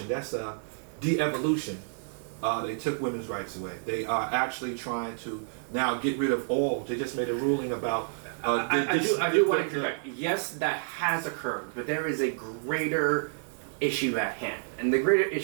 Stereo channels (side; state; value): left; silent; 58 dB below the other